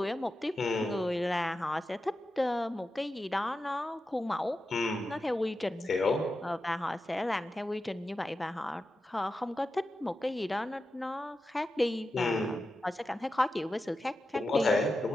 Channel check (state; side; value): normal; both; correlation 0.91